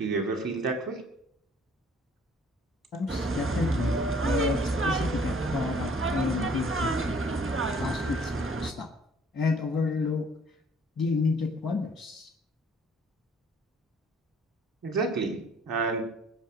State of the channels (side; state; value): both; normal; correlation 0.57